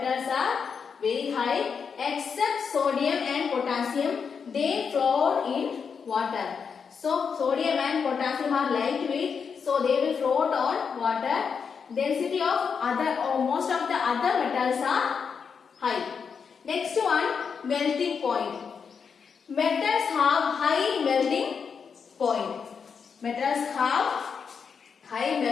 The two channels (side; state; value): right; quieter; 6.2 dB